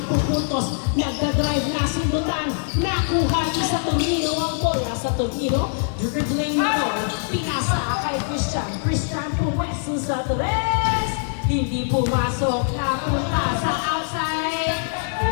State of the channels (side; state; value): right; silent; 64 dB below the other